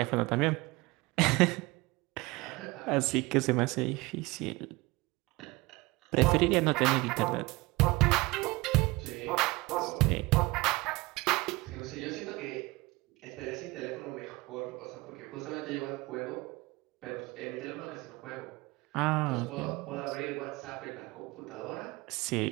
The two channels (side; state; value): left; quieter; 22.5 dB